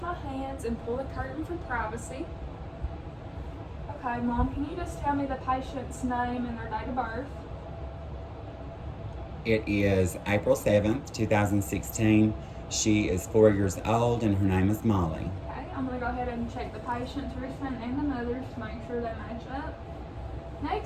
hands and pull the curtain for privacy. Okay, Mom, can you just tell me the patient's name and their date of birth? It is April 7th, 2016. She is 4 years old and her name is Molly. Okay, I'm going to go ahead and check the patient's wristband and the mother's to make sure they match up.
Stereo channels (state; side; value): identical; both; correlation 1.00